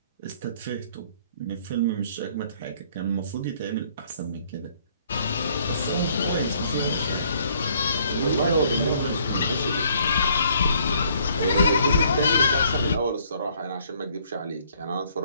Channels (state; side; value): inverted; both; correlation -0.63